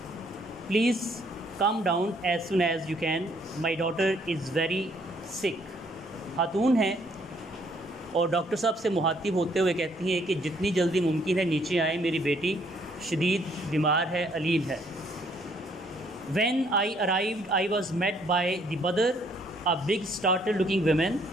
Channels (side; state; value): both; normal; correlation 0.66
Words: Please come down as soon as you can. My daughter is very sick. खातून हैं और डॉक्टर साहब से मुखातिब होते हुए कहती हैं कि जितनी जल्दी मुमकिन है नीचे आए, मेरी बेटी शदीद बीमार है, अलील है. When I arrived, I was met by the mother, a big startled looking woman,